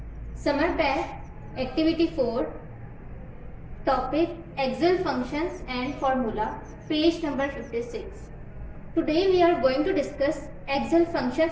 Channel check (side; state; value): both; identical; correlation 1.00